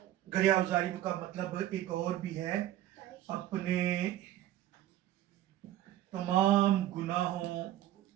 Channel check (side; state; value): left; quieter; 13.4 dB